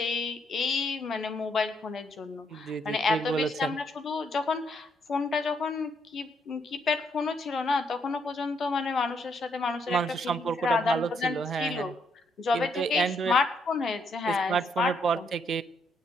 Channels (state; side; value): normal; both; correlation 0.74